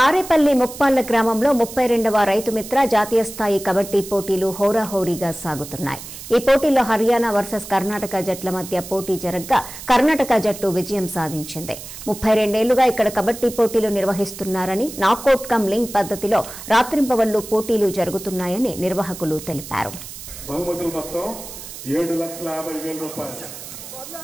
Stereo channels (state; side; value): noise; right; hiss, 13 dB below the sound